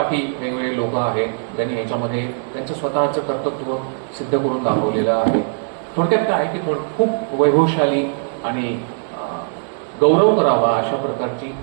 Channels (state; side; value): silent; left; digital silence